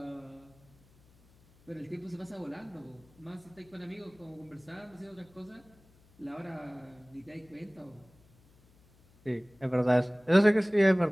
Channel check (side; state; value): left; noise; hum, 29 dB below the sound